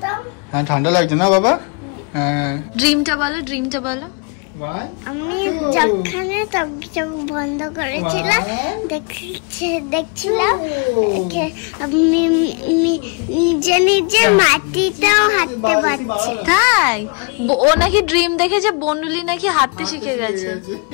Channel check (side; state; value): right; quieter; 34.6 dB